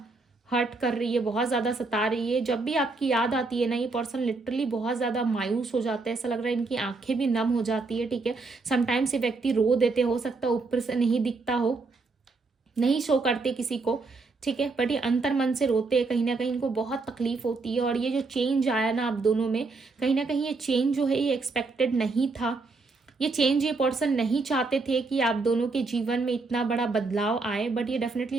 हर्ट कर रही है, बहुत ज्यादा सता रही है। जब भी आपकी याद आती है ना ये पर्सन लिटरली बहुत ज्यादा मायूस हो जाता है। ऐसा लग रहा है इनकी आंखें भी नम हो जाती है, ठीक है। समटाइम्स ये व्यक्ति रो देते, हो सकता है ऊपर से नहीं दिखता हो, नहीं शो करते किसी को, ठीक है, बट ये अंतर मन से रोते हैं। कहीं ना कहीं इनको बहुत तकलीफ होती है। और ये जो चेंज आया ना आप दोनों में, कहीं ना कहीं ये चेंज जो है ये एक्सपेक्टेड नहीं था। ये चेंज ये पर्सन नहीं चाहते थे कि आप दोनों के जीवन में इतना बड़ा बदलाव आए, बट ये डेफिनेटली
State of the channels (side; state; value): left; quieter; 3.8 dB